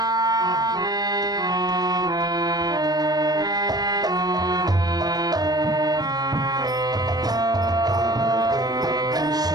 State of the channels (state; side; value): late; left; 0.19 ms